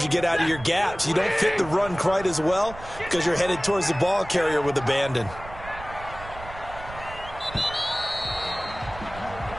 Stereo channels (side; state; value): right; noise; rumble, 15 dB below the sound